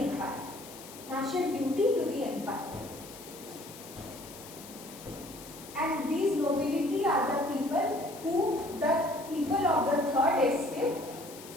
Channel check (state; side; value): noise; left; hiss, 16 dB below the sound